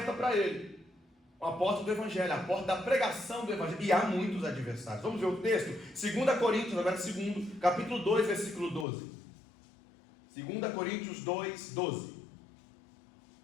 para ele. A porta do Evangelho, a porta da pregação do Evangelho. E há muitos adversários. Vamos ver o texto? 2 Coríntios, agora capítulo 2, versículo 12. 2 Coríntios 2, 12.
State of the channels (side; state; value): right; drops out; at 8.8 s